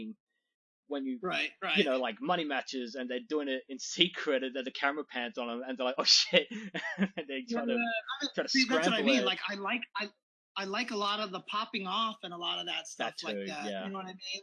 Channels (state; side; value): identical; both; correlation 1.00